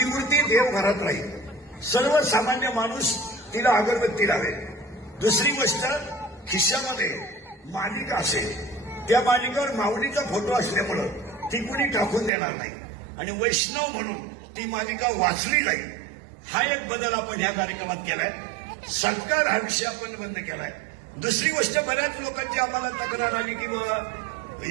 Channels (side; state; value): left; drops out; at 12.3 s